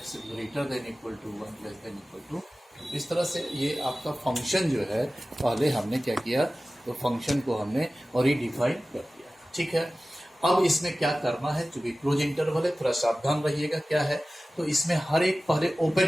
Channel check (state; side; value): normal; both; correlation 0.96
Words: greater than equal to 1 less than equal to. इस तरह से ये आपका फंक्शन जो है पहले हमने क्या किया तो फंक्शन को हमने रिडिफाइन कर दिया, ठीक है। अब इसमें क्या करना है, चूंकि क्लोज इंटरवल है थोड़ा सावधान रहिएगा क्या है। तो इसमें हर एक पहले ओपन